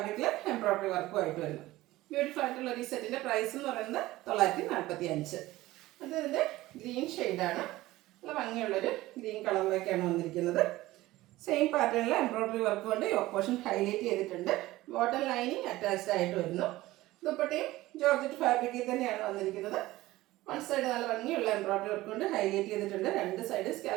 എംബ്രോയ്ഡറി വർക്കുമായിട്ട് വരുന്നു. ബ്യൂട്ടിഫുൾ ആയിട്ടുള്ള ഈ സെറ്റിന്റെ പ്രൈസ് എന്ന് പറയുന്നത് 945. അത് ഇതിന്റെ ഗ്രീൻ ഷെയ്ഡാണ്. നല്ല ഭംഗിയുള്ളൊരു ഗ്രീൻ കളറിലേക്കാണ് വന്നിരിക്കുന്നത്. സെയിം പാറ്റേണിൽ എംബ്രോയ്ഡറി വർക്ക് കൊണ്ട് യോക്ക് പോർഷൻ ഹൈലൈറ്റ് ചെയ്തിട്ടുണ്ട്. ബോട്ടം ലൈനിങ് അറ്റാച്ച്ഡ് ആയിട്ട് വരുന്നു. ദുപ്പട്ടയും ജോർജറ്റ് ഫാബ്രിക്കിൽ തന്നെയാണ് വന്നിരിക്കുന്നത്. വൺ സൈഡ് നല്ല ഭംഗിയുള്ള എംബ്രോയ്ഡറി വർക്ക് കൊണ്ട് ഹൈലൈറ്റ് ചെയ്തിട്ടുണ്ട്. രണ്ട് സൈഡ്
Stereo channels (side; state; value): left; quieter; 17.5 dB